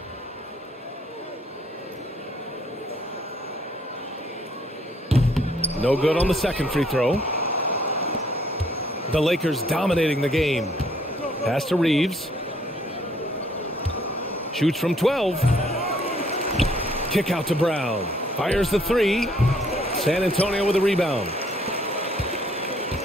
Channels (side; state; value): both; normal; correlation 0.65